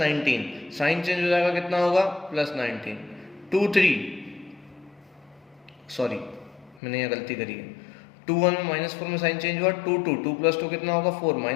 साइन चेंज हो जाएगा कितना होगा +19। 2 3 सॉरी मैंने यहाँ गलती करी है, 2 1 में -4 में साइन चेंज हुआ, 2 2 2 + 2 कितना होगा 4,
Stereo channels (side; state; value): right; drops out; at 6.8 s